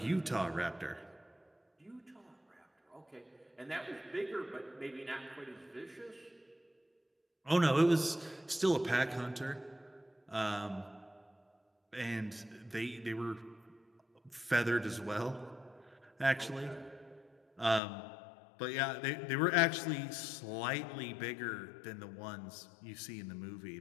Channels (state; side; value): drops out; right; at 17.8 s